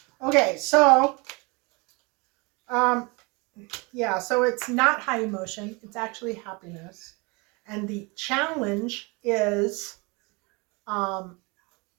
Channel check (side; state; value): left; quieter; 28.1 dB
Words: Okay, so yeah, so it's not high emotion, it's actually happiness. And the challenge is